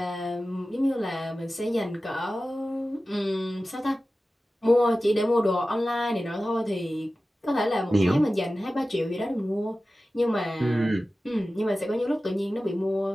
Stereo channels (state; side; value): normal; both; correlation 0.95